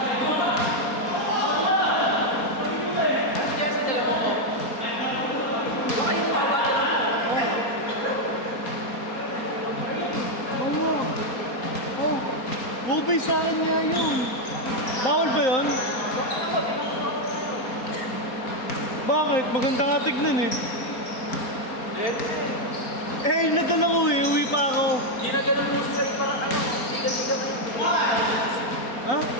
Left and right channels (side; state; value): right; late; 4.2 ms